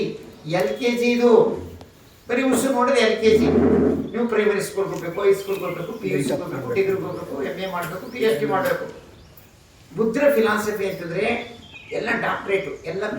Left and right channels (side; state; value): both; identical; correlation 1.00